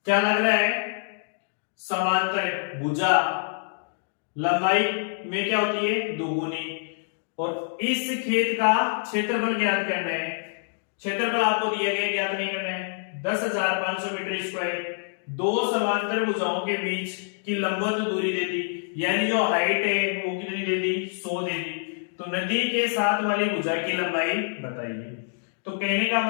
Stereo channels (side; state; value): right; silent; digital silence